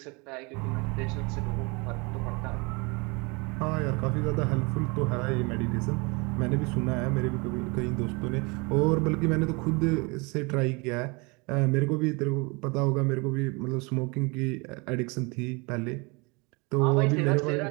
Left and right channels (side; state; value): left; quieter; 28.6 dB